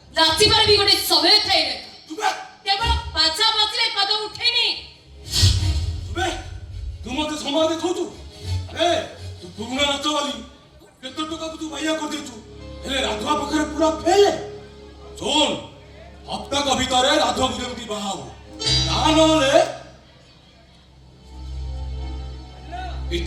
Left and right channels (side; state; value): both; identical; correlation 1.00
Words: ନାଚିବାର ବି ଗୋଟେ ସମୟ ଥାଏ ରେ ତୁବେ କେବଳ ବାଜା ବାଜିଲେ ପାଦ ଉଠେନି ତୁବେ ତୁ ମତେ ସମୟ ଦେଖାଉଛୁ ଏ ତୁ ପୁରୁଣା ନାଚ ବାଲି କେତେ ଟଙ୍କାକୁ ତୁ ବାଇଆ କରିଦେଇଛୁ ହେଲେ ରାଧୁଆ ପାଖରେ ପୁରା ଫେଲେ ଶୁଣ ହପ୍ତାକ ଭିତରେ ରାଧୁଆକୁ ଯେମିତି ବାହା ହବ ତାହା ନହେଲେ